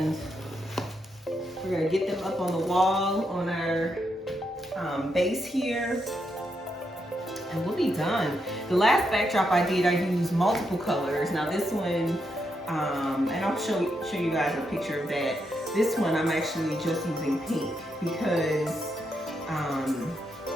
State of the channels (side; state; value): both; normal; correlation 0.81